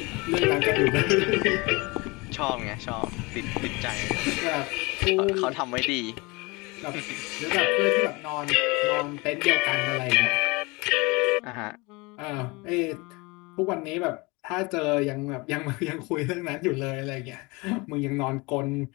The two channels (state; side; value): quieter; right; 25.6 dB